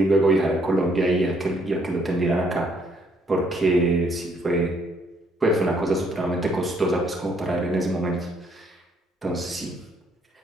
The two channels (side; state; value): both; normal; correlation 0.68